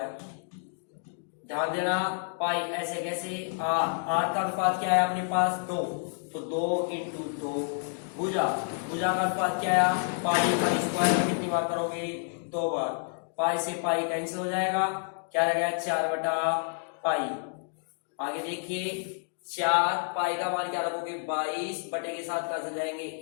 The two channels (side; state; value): right; silent; 58 dB below the other